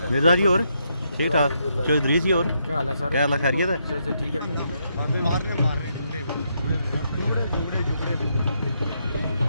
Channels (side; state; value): both; inverted; correlation -0.78